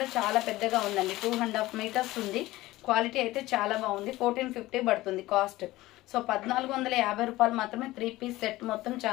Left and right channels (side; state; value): right; quieter; 17.9 dB